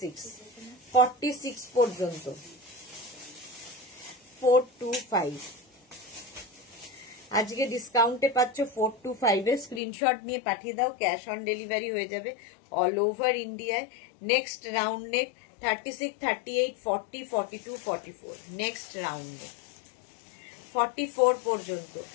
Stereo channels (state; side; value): drops out; right; at 9.8 s